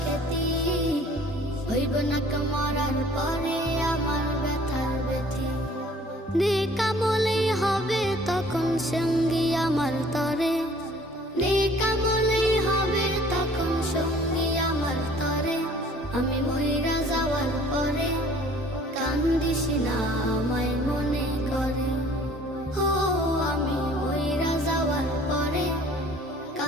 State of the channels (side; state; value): both; normal; correlation 0.53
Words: খ্যাতি, হইবে না কেউ মরার পরে আমার ব্যথার ব্যথি। নেকামলেই হবে তখন সঙ্গী আমার তরে, নেকামলেই হবে তখন সঙ্গী আমার তরে। আমি মইরা যাওয়ার পরে কান্দিস না আমায় মনে করে, ও আমি মইরা যাওয়ার পরে